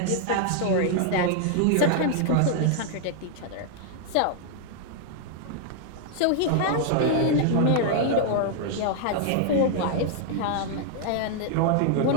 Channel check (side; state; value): both; different; correlation -0.01